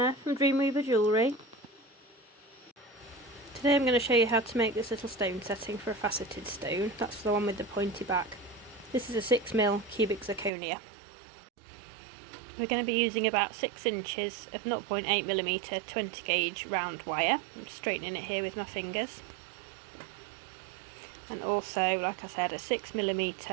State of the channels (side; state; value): left; drops out; at 10.5 s